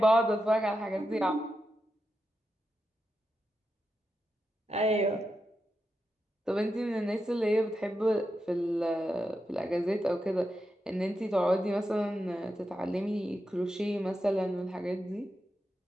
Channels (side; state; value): both; normal; correlation 0.88